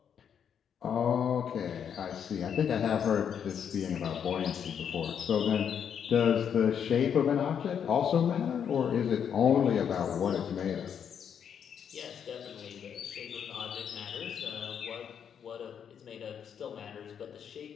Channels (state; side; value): quieter; right; 8.0 dB